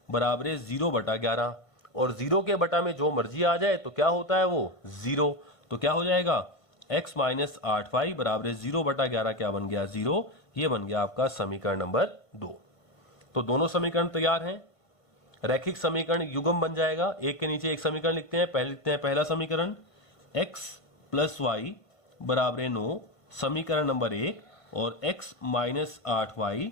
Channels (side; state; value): right; late; 1.5 ms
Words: बराबर 0 बटा 11, और 0 के बटा में जो मर्जी आ जाए तो क्या होता है वो 0, तो क्या हो जाएगा x माइनस 8y बराबर 0 बटा 11 क्या बन गया 0। ये बन गया आपका समीकरण नंबर 2। तो दोनों समीकरण तैयार हैं, रैखिक समीकरण युग्म बन जाएगा। एक के नीचे एक समीकरण लिखते हैं। पहले लिखते हैं पहला समीकरण x प्लस वाई बराबर 9 समीकरण नंबर 1, और x माइनस 8y